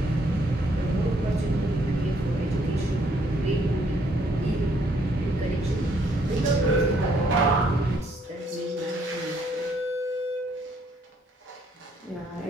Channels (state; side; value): normal; both; correlation 0.68